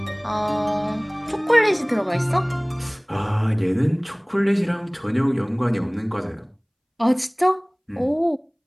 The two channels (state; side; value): identical; both; correlation 1.00